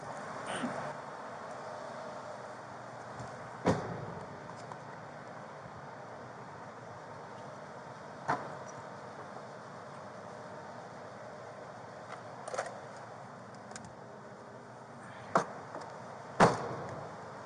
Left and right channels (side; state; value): both; identical; correlation 1.00